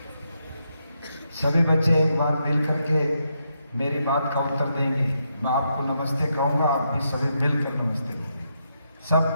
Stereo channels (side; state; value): both; inverted; correlation -0.81